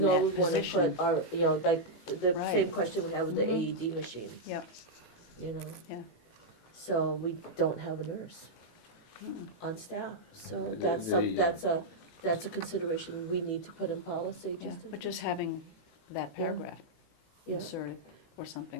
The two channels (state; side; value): late; right; 18 ms